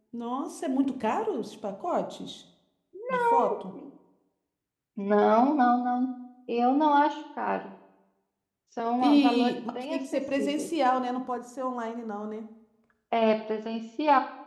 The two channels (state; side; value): identical; both; correlation 1.00